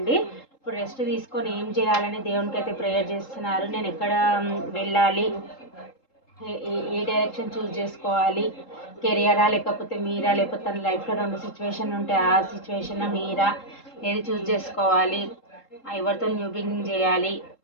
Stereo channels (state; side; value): late; right; 3.7 ms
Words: ఇప్పుడు రెస్ట్ తీసుకొని ఏం చేయాలని దేవునికి అయితే ప్రేయర్ చేస్తున్నారు. నేను ఎక్కడ వెళ్ళాలి, ఏ డైరెక్షన్ చూస్ చేసుకోవాలి, కెరియరా లేకపోతే మీరా, లేకపోతే తన లైఫ్లో 2 సిచ్యువేషన్ ఉంటే ఆ సిచ్యువేషన్ మీరా, ఏది చూస్ చేసుకోవాలి, ఎవరితో న్యూ బిగినింగ్ చేయాలి